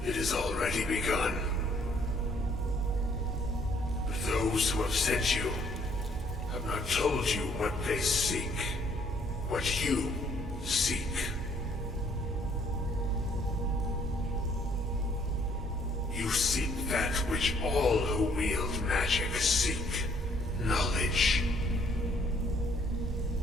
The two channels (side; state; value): both; normal; correlation 0.64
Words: It has already begun. But those who have sent you have not told you what they seek, what you seek. You seek that which all who wield magic seek, knowledge.